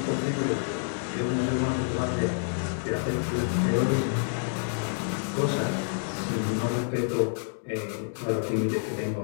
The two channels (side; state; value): right; silent; digital silence